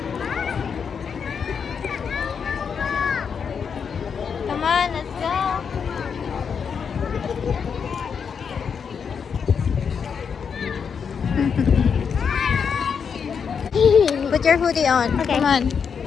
Come on, let's go. Put your hoodie on. Okay. Come on.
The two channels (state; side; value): quieter; right; 6.5 dB